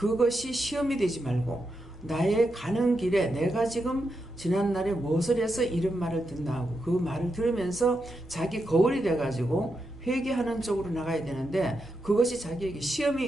시험이 되지 말고 나의 가는 길에 내가 지금 지난날에 무엇을 해서 이런 말을 듣나 하고 그 말을 들으면서 자기 거울이 돼가지고 회개하는 쪽으로 나가야 되는데 그것이 자기에게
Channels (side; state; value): both; normal; correlation 0.85